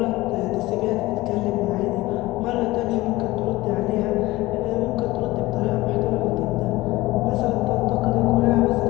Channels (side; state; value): right; quieter; 19.1 dB